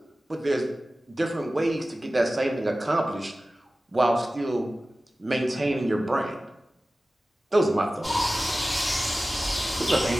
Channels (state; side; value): normal; both; correlation 0.96